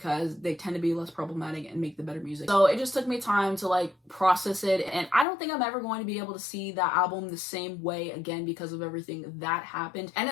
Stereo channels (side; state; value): right; drops out; at 5.2 s